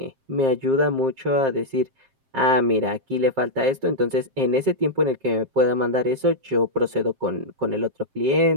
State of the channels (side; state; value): left; late; 7.5 ms